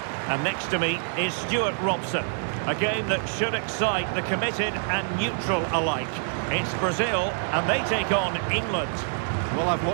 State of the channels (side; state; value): left; silent; 60 dB below the other